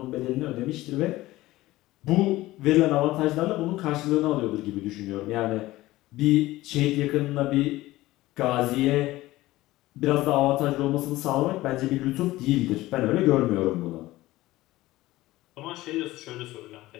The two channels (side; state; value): right; quieter; 17.5 dB